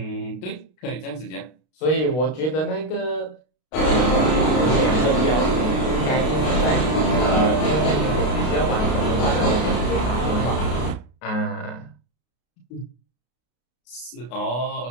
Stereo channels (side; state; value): right; late; 32 ms